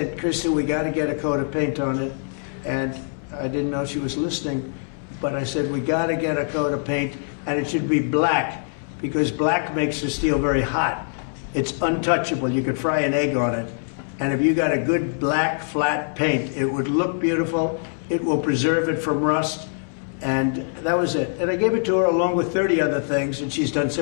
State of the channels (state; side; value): silent; right; digital silence